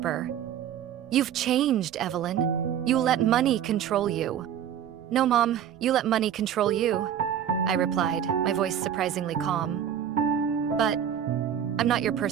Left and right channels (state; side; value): quieter; left; 9.6 dB